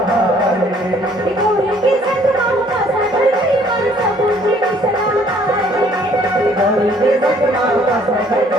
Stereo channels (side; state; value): both; normal; correlation 0.61